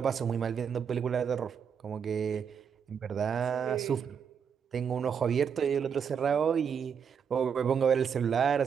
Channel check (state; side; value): quieter; left; 7.1 dB